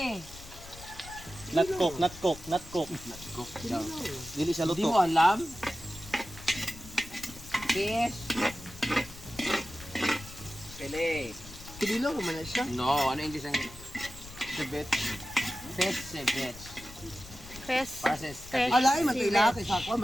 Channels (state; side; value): noise; left; rumble, 16 dB below the sound